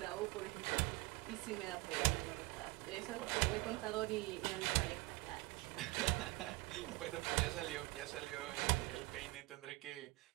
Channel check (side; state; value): left; quieter; 21.7 dB